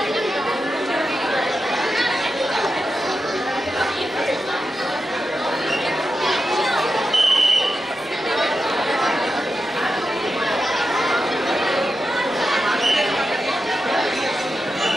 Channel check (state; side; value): normal; both; correlation 0.89